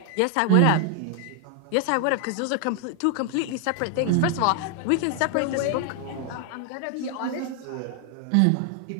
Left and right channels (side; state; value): both; different; correlation 0.00